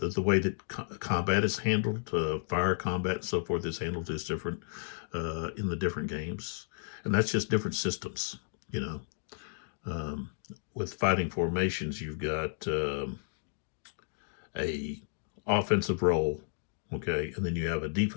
way that combat is handled, fire combat and so forth is handled is different in the different games, and that's just different systems. With Fighting Formations, you've got a offensive role, okay, and then you have a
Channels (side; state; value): right; silent; digital silence